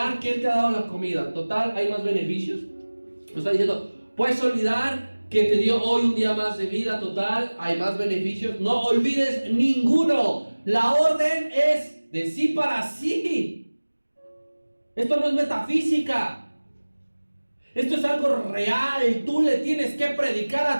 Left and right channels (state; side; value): inverted; both; correlation -1.00